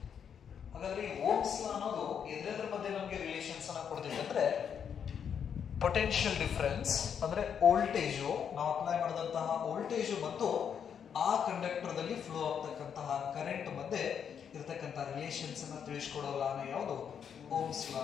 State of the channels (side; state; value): right; quieter; 7.8 dB